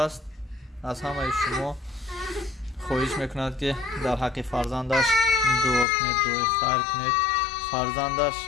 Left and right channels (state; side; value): drops out; right; at 5.9 s